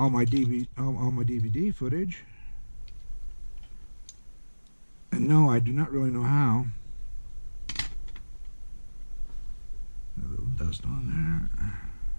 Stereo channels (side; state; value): both; inverted; correlation -1.00